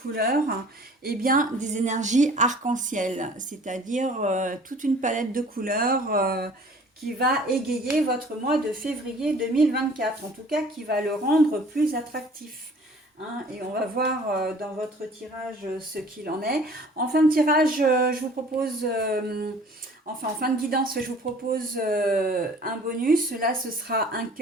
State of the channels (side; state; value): both; normal; correlation 0.50